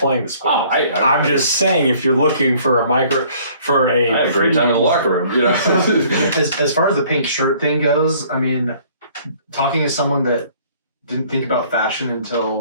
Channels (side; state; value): both; inverted; correlation -0.57